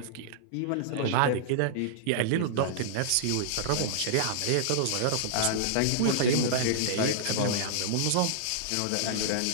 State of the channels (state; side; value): different; both; correlation -0.02